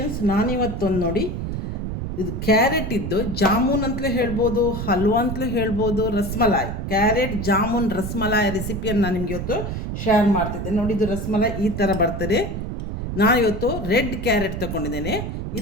ನಾನಿವತ್ತೊಂದು ನೋಡಿ, ಇದು ಕ್ಯಾರೆಟ್ ಇದ್ದು ಜಾಮೂನ್ ಅಂತಲೇ ಹೇಳ್ಬೋದು, ಹಲ್ವಾ ಅಂತಲೇ ಹೇಳ್ಬೋದು, ರಸ್ಮಲಾಯ್ ಕ್ಯಾರೆಟ್ ಜಾಮೂನ್ ರಸ್ಮಲಾಯ್ ರೆಸಿಪಿಯನ್ನು ನಾನು ನಿಮಗೆ ಇವತ್ತು ಶೇರ್ ಮಾಡ್ತಿದ್ದೆ. ನೋಡಿ, ಇದು ರಸ್ಮಲಾಯ್ ಈ ಥರ ಬರ್ತದೆ. ನಾನಿವತ್ತು ರೆಡ್ ಕ್ಯಾರೆಟ್ ತೊಗೊಂಡಿದ್ದೇನೆ.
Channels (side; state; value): right; noise; rumble, 5 dB below the sound